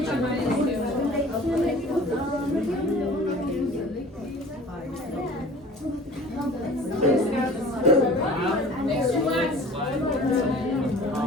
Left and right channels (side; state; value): both; normal; correlation 0.45